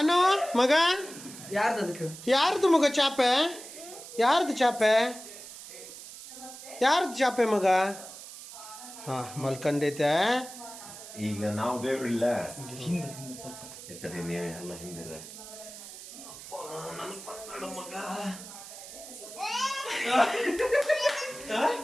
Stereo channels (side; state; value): right; noise; hiss, 14 dB below the sound